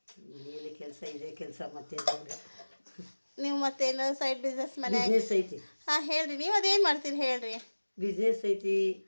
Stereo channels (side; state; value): both; inverted; correlation -1.00